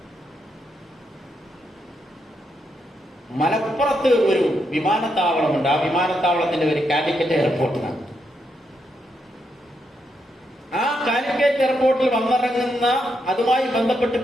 മലപ്പുറത്ത് ഒരു വിമാനത്താവളമുണ്ട്. ആ വിമാനത്താവളത്തിന്റെ ഒരു കാലിക്കറ്റ് എയർപോർട്ടിനാണ്. ആ കാലിക്കറ്റ് എയർപോർട്ടിൽ വന്നിറങ്ങുന്ന, അതുമായി ബന്ധപ്പെട്ട്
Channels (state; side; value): normal; both; correlation 0.80